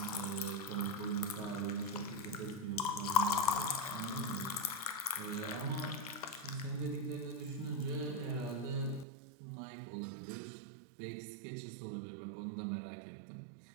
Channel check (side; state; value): left; drops out; at 9.1 s